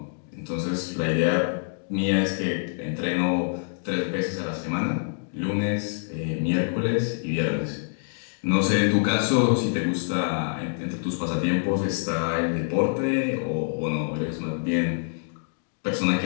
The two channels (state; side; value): silent; right; digital silence